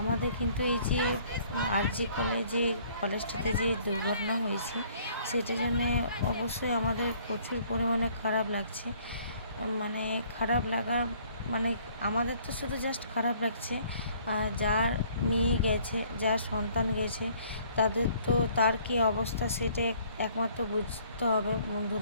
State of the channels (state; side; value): inverted; both; correlation -0.60